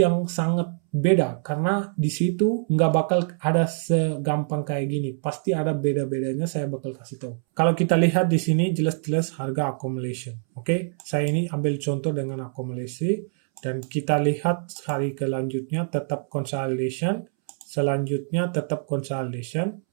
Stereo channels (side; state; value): left; silent; 62 dB below the other